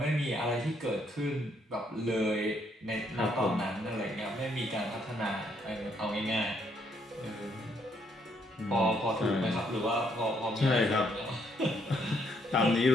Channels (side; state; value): both; normal; correlation 0.72